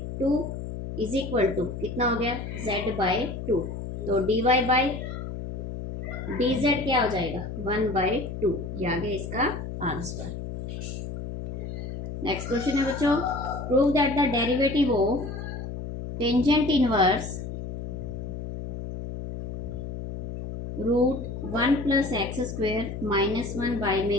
is equal to कितना हो गया, z/2। तो dy बाई dz क्या हो जाएगा, 1/2। ये आ गया इसका आंसर। नेक्स्ट क्वेश्चन है बच्चों, prove that the derivative of tangent inverse √1 + x² - 1 by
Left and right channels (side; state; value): left; noise; hum, 7 dB below the sound